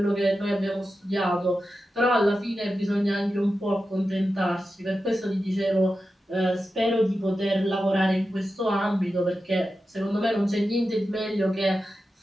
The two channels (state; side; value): normal; both; correlation 0.91